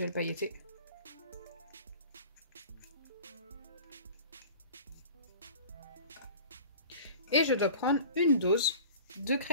pailleté. Et je dois prendre une dose de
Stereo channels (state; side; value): inverted; both; correlation -0.41